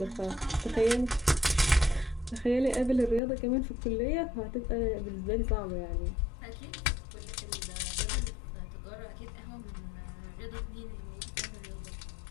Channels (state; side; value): drops out; right; at 3.2 s